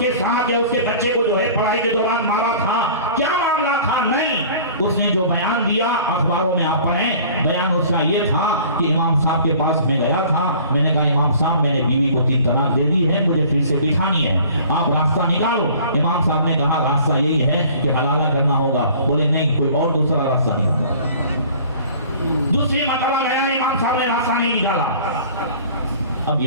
साथ या उसके बच्चे को जो है पढ़ाई के दौरान मारा था? क्या मामला था? नहीं, उसने जो बयान दिया अखबारों में आप पढ़ें, बयान उसका ये था कि इमाम साहब के पास मैं गया था, मैंने कहा इमाम साहब मैंने बीवी को 3 तलाक दे दी है, मुझे फिर से बिठानी है, आप रास्ता निकालो। इमाम साहब ने कहा रास्ता यही है कि हलाला करना होगा। बोले नहीं, कोई और दूसरा रास्ता नहीं होगा। दूसरी मरतबा गया, इमाम साहब ने रास्ता नहीं निकाला। अब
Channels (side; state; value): both; inverted; correlation -0.48